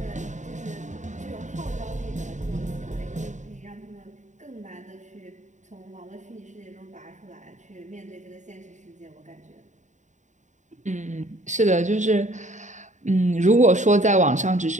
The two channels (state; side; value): late; left; 0.35 ms